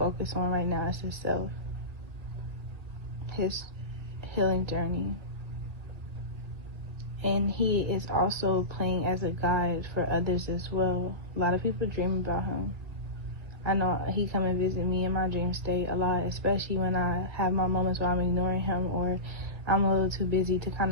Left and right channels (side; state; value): left; late; 1.8 ms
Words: on right now is himself, his healing journey. And he is also playing as a guide for others as well. A lot of people dream about him. I know he come and visit me in my dream state a lot, especially when I have my moments where I'm ignoring him or I'm a little too busy to kind